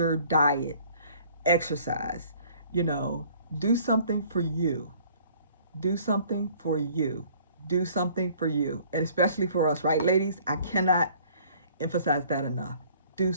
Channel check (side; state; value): both; inverted; correlation -0.55